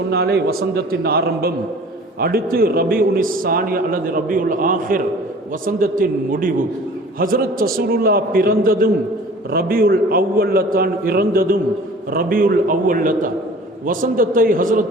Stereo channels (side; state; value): both; normal; correlation 0.46